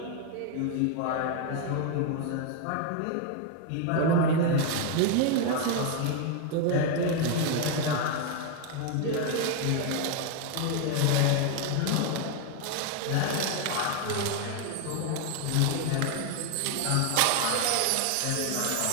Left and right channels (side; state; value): both; different; correlation 0.01